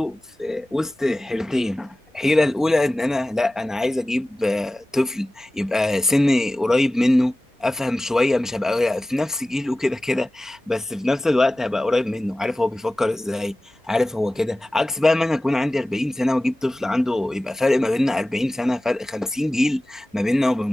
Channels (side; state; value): both; normal; correlation 0.97